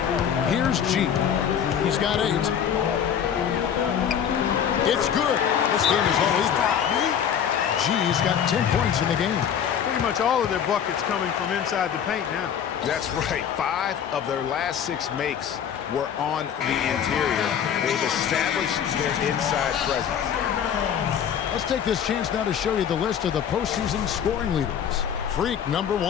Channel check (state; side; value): quieter; right; 8.5 dB